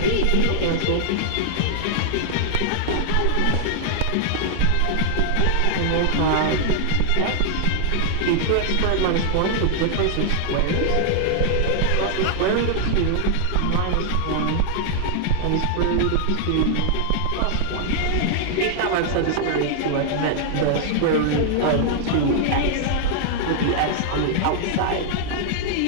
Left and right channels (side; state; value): both; different; correlation -0.01